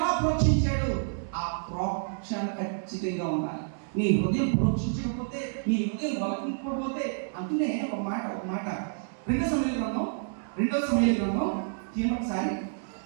ప్రోక్షించాడు. ఆ ప్రోక్షణ ఖచ్చితంగా ఉండాలి. నీ హృదయం ప్రోక్షించకపోతే, నీ హృదయం బలపడకపోతే, అందునే ఒక మాట రెండవ సమూయేలు గ్రంథం ఒకసారి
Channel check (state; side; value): silent; left; digital silence